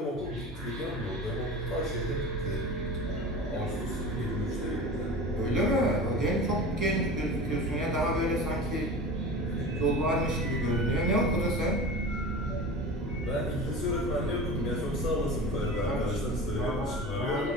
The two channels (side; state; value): both; normal; correlation 0.33